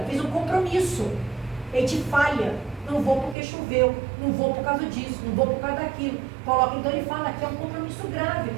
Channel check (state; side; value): drops out; left; at 3.4 s